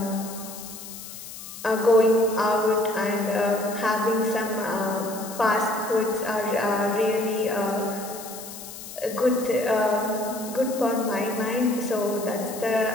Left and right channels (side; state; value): left; noise; hiss, 13 dB below the sound